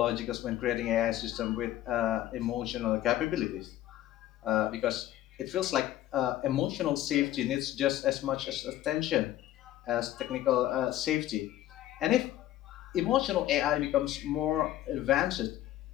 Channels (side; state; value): right; quieter; 13.6 dB